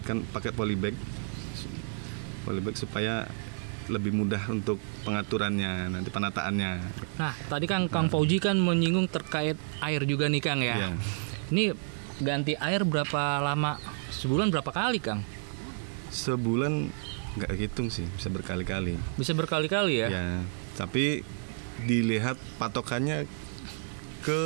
pakai polybag supaya lebih mudah untuk pengaturannya, nanti penataannya. Nah, tadi kan Kang Fauji kan menyinggung terkait air juga nih Kang ya. Ini ganti air berapa lama? Sebulan berapa kali Kang? Sebulan nggak hitung sih, bisa berkali-kali. Bisa berkali-kali ya? Ya, tapi dilihat patokannya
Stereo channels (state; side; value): silent; left; digital silence